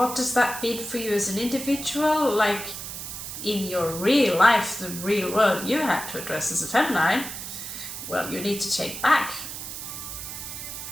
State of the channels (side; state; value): right; noise; hiss, 8 dB below the sound